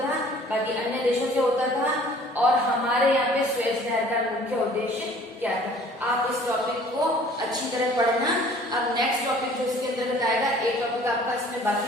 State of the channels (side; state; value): both; normal; correlation 0.52